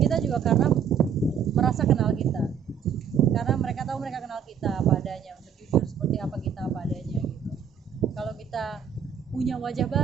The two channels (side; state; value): left; quieter; 7.8 dB